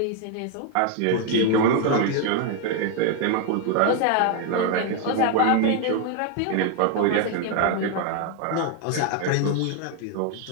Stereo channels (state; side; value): different; both; correlation 0.01